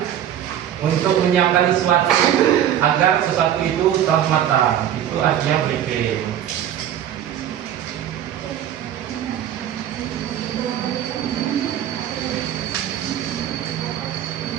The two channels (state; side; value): quieter; left; 10.6 dB